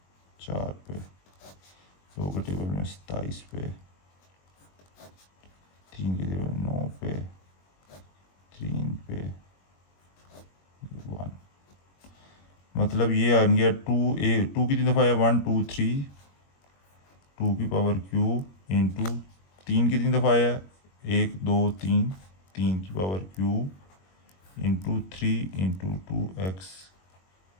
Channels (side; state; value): right; late; 21 ms